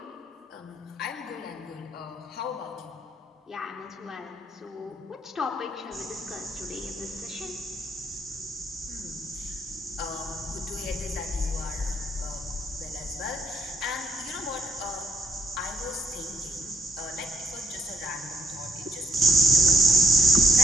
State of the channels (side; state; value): both; normal; correlation 0.70